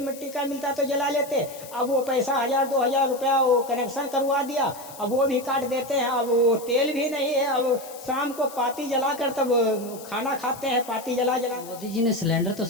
मिट्टी का मिलता तो जला लेते। अब वो पैसा 1,000-2,000 रुपया वो कनेक्शन करवा दिया, अब वो भी काट देते हैं। अब वो तेल भी नहीं है, अब शाम को पाती जला कर तब खाना खाते हैं, पाती जला। मोदी जी ने सिलेंडर तो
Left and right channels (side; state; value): left; noise; hiss, 17 dB below the sound